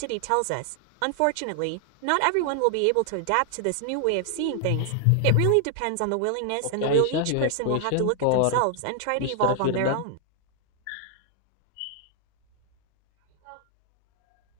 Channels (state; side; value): different; both; correlation 0.00